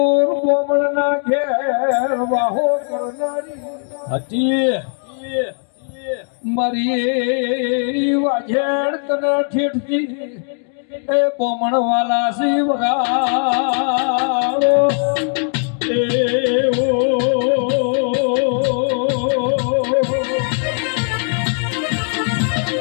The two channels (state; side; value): silent; right; 56 dB below the other